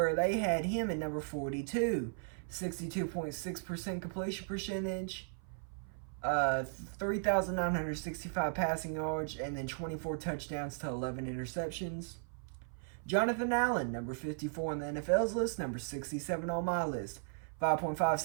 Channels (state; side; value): silent; left; 54 dB below the other